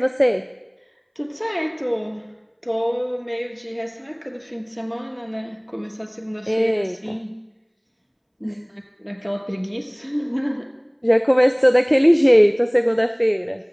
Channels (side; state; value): both; identical; correlation 1.00